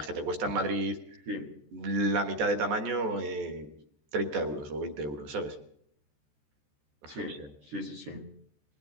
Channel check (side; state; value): left; late; 14 ms